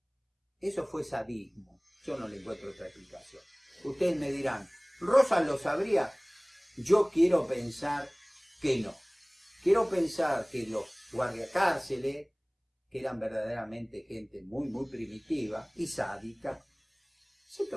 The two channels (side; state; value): both; identical; correlation 1.00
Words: Eso fue sadismo. Yo no le encuentro otra explicación. Ustedes me dirán, ¿Rosas lo sabría? Yo quiero pensar que no. Quiero pensar que los guardiacárceles, que eran verdaderamente gente muy, muy primitiva y sádica, se